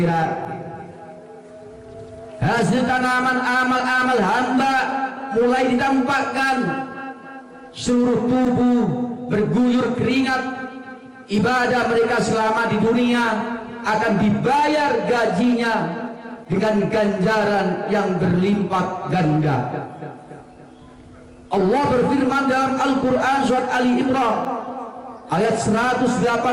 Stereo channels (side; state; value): both; identical; correlation 1.00